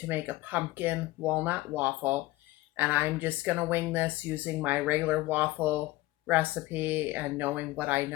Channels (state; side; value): quieter; right; 19.0 dB